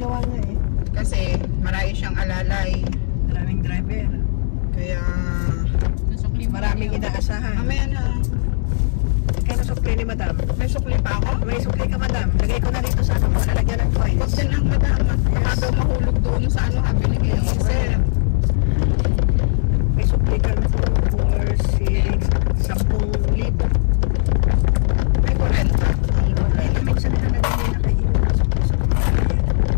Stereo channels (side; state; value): right; silent; digital silence